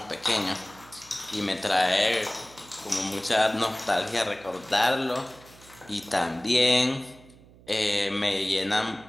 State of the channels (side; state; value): right; noise; hum, 24 dB below the sound